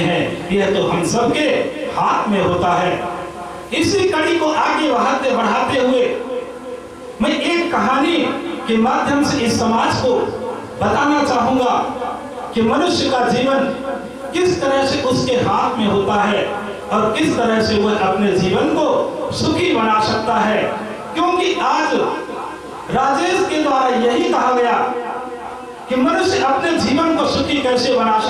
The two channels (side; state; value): both; identical; correlation 1.00